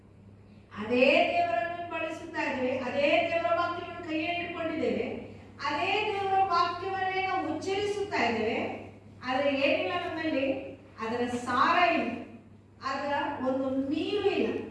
ಅದೇ ದೇವರನ್ನು ಬಳಸುತ್ತಾ ಇದ್ದೇವೆ, ಅದೇ ದೇವರ ವಾಕ್ಯವನ್ನು ಕೈಯಲ್ಲಿ ಇಟ್ಕೊಂಡಿದ್ದೇವೆ, ಅದೇ ದೇವರ ವಾಕ್ಯವನ್ನೇ ನಾವು ಉಚ್ಚರಿಸುತ್ತಾ ಇದ್ದೇವೆ. ಆದರೆ ಏನಿಲ್ಲ ನಮ್ಮಲ್ಲಿ, ಅದರ ಸಾರ ಇಲ್ಲ, ಅದರ ಒಂದು ನೀರು ಇಲ್ಲ,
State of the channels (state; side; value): identical; both; correlation 1.00